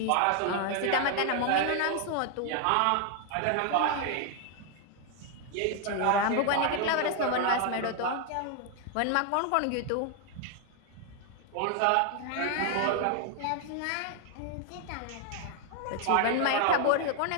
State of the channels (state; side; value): different; both; correlation 0.00